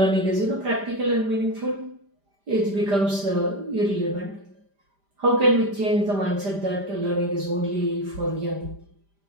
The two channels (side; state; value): left; late; 5.0 ms